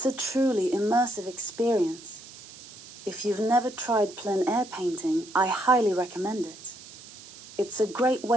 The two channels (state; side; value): noise; right; hiss, 18 dB below the sound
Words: a truly immersive experience. If you've never tried plein air painting, I highly recommend it. It's a great